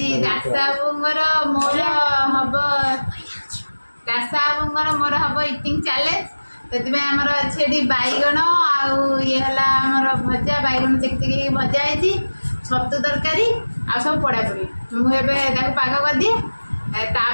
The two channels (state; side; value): inverted; both; correlation -1.00